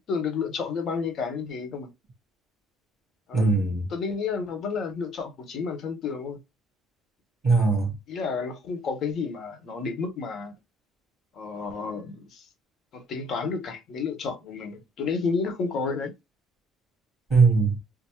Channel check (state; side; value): normal; both; correlation 0.61